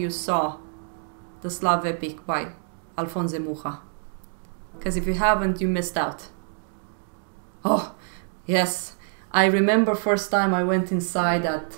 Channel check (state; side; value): silent; left; 61 dB below the other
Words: saw the Slav epic by Alphonse Mucha. Because if you haven't, you missed out. Oh, yes. I remember first time I went inside that